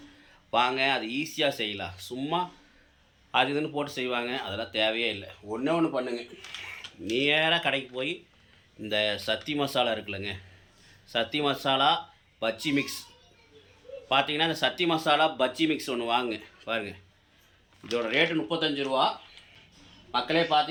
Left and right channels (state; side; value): identical; both; correlation 1.00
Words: வாங்க. அது ஈஸியாக செய்யலாம். சும்மா அது இதுன்னு போட்டு செய்வாங்க, அதெல்லாம் தேவையே இல்லை. ஒன்று பண்ணுங்க, நேராக கடைக்கு போய் இந்த சத்தி மசாலா இருக்குல்லங்க, சத்தி மசாலா பஜ்ஜி மிக்ஸ் பார்த்தீங்கன்னா, இந்த சத்தி மசாலா பஜ்ஜி மிக்ஸ் ஒன்று வாங்க பாருங்கள். இதோட ரேட்டு 35 ரூபா. மக்களே